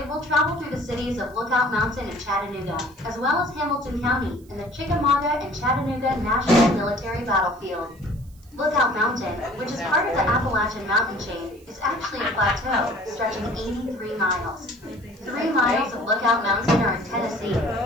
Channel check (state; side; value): noise; right; hiss, 29 dB below the sound